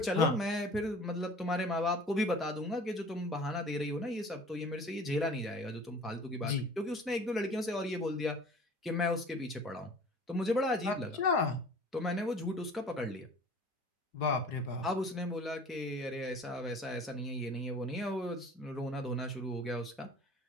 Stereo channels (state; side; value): normal; both; correlation 0.46